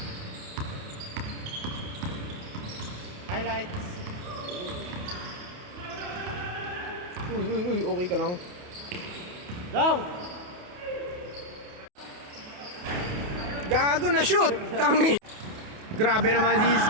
Highlights. Uy, okay ka lang. Lang! Gago na shoot! Tangi! Grabe naman si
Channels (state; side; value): late; left; 28 ms